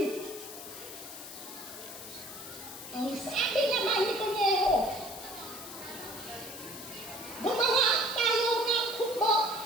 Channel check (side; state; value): left; noise; hiss, 11 dB below the sound